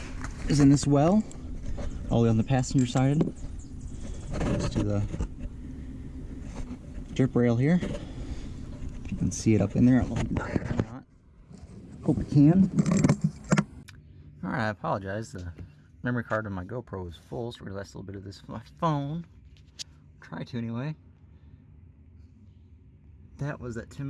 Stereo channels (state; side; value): identical; both; correlation 1.00